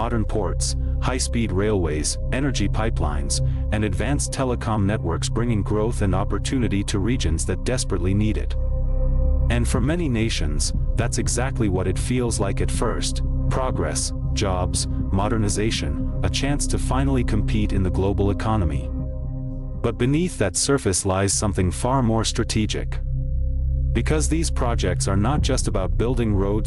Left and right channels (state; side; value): identical; both; correlation 1.00